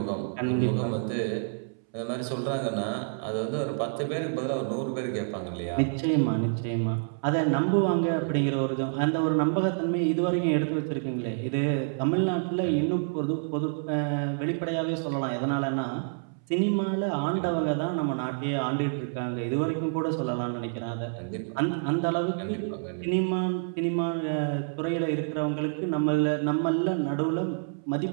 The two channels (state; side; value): silent; left; 59 dB below the other